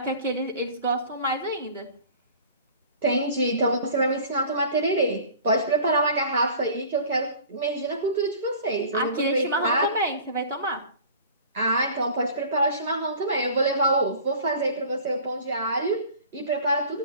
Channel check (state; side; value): inverted; both; correlation -0.44